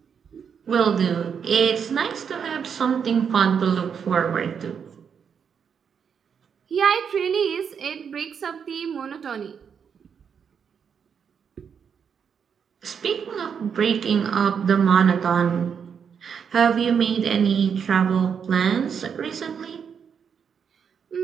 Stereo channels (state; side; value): quieter; left; 7.0 dB